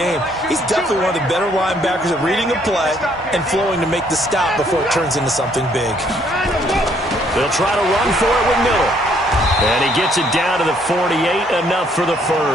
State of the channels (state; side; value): normal; both; correlation 0.67